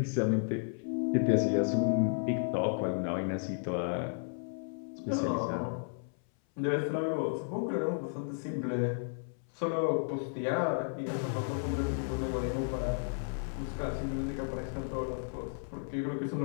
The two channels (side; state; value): right; silent; 56 dB below the other